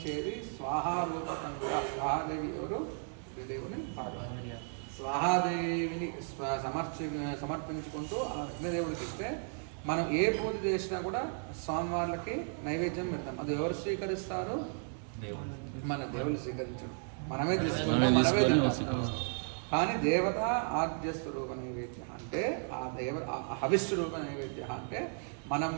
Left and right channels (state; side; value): silent; left; 55 dB below the other